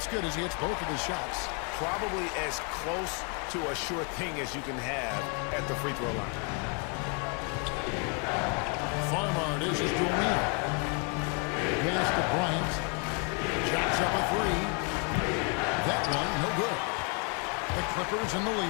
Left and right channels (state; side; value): quieter; right; 37.0 dB